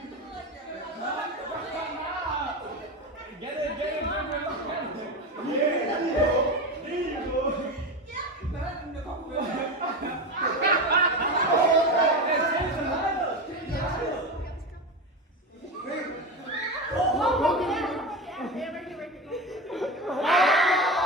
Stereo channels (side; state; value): both; normal; correlation 0.21